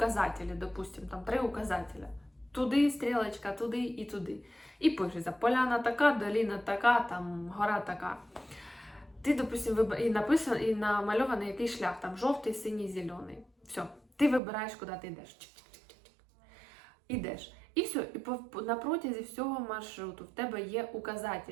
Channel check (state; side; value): drops out; left; at 14.4 s